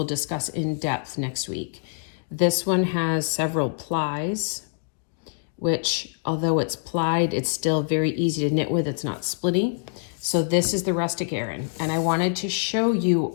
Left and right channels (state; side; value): silent; right; digital silence